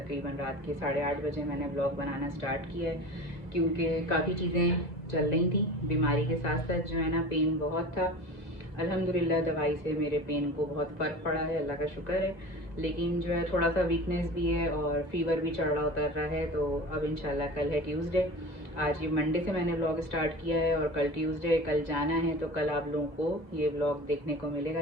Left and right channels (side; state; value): right; late; 2.0 ms